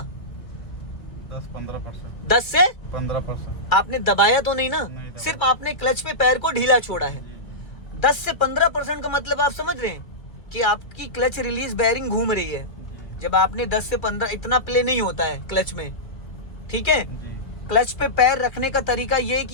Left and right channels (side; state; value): right; late; 2.3 ms